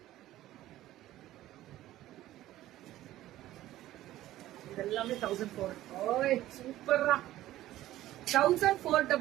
இதெல்லாமே 1400. சூப்பரா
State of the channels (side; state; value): left; quieter; 14.7 dB